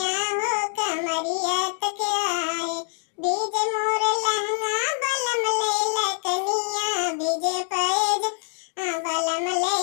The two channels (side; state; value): right; silent; digital silence